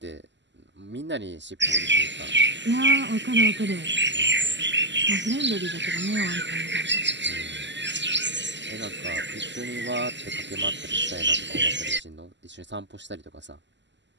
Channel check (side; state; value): left; late; 0.53 ms